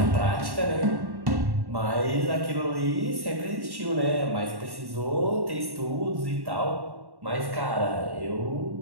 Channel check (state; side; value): late; left; 1.1 ms